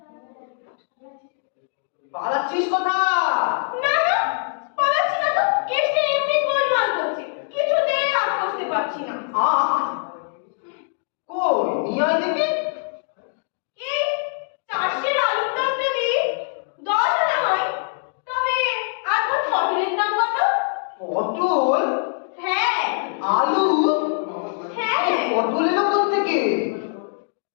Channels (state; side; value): silent; right; digital silence